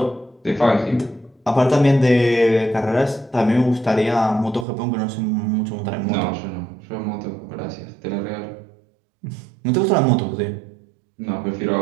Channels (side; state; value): left; drops out; at 4.7 s